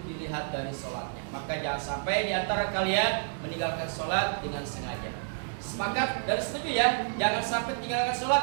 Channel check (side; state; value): left; silent; digital silence